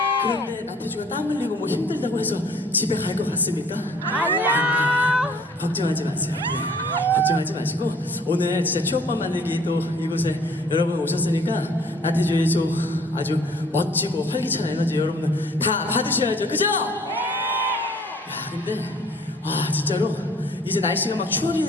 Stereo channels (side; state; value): both; normal; correlation 0.55